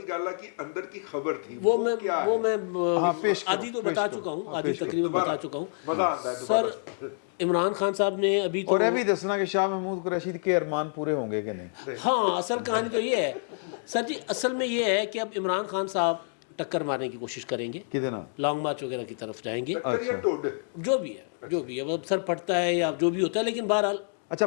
گالا کی اندر کی خبر تھی وہ میں آدھی تو بتا چکا ہوں آدھی تقریباً بتا چکا ہوں. سر عمران خان صاحب نے ابھی اور یہ بھی دسنا کہ شاہ محمود قریشی کے ارمان پورے ہوں گے کہ نہیں. ہاں اصل کہانی تو یہ ہے سر جی. اصل میں یہ ہے کہ اب عمران خان صاحب ٹکر مارنے کی کوشش کریں گے کتنا لانگ مارچ وغیرہ کی طرف جائیں گے جو بھی ہے اب سر پڑتا ہے یا جو بھی ہوتا ہے. لیکن بہرحال اچھا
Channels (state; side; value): silent; right; digital silence